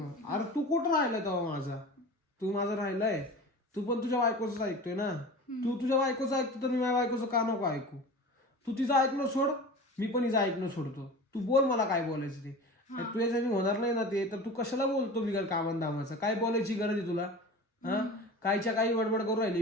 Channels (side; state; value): both; normal; correlation 0.35